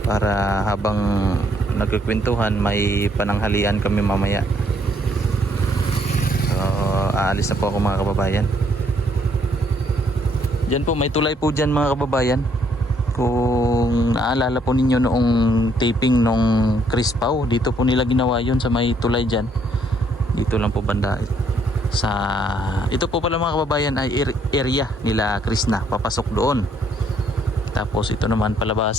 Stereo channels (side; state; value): both; normal; correlation 0.68